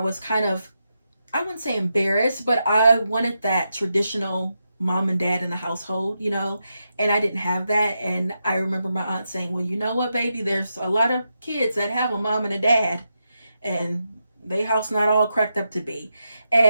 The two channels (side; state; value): both; inverted; correlation -0.85